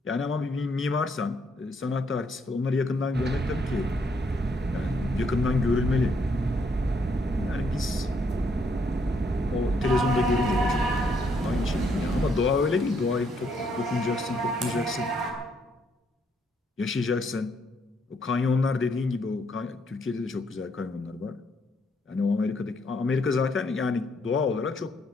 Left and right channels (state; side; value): normal; both; correlation 0.72